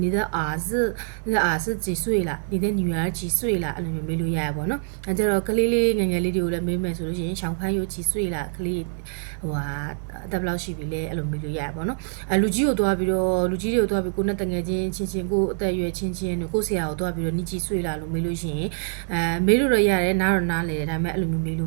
你的儿子几岁了你的女儿几岁了အဲ့လိုမျိုးမေးလို့ရရပါတော့အဲကြတော့ကလေးငယ်လေးတွေကိုလည်းမေးမယ်ဆိုလို့ရှိရင်ရှောင်းဖန်းရိုး几岁了ကလေးအသက်ဘယ်လောက်ရှိပြီလဲအဲ့လိုမေးလို့ရရပါတော့လူကြီးတွေကိုတွားပြီးကိုနဲ့တငယ်ချင်းကိုအသက်အရွယ်ချင်းတို့ကိုဆရာကိုတွားပြီးတော့你几岁了လို့မေးလို့ရှိရင်မေးလို့တော့ရတယ်နားတော့နားလေတယ်ဒါပေမဲ့အဲ့လိုမျိုးမေးလို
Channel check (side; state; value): left; silent; digital silence